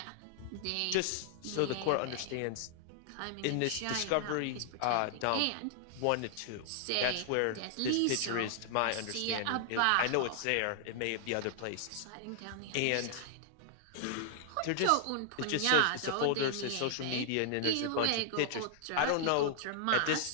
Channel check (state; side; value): different; both; correlation -0.01